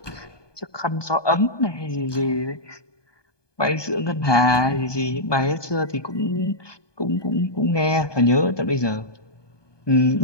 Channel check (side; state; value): right; late; 1.2 ms